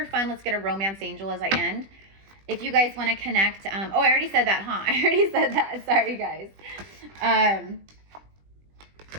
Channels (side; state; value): left; late; 20 ms